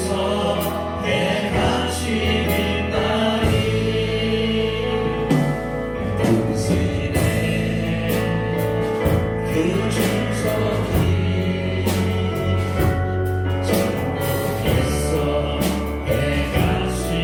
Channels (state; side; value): identical; both; correlation 1.00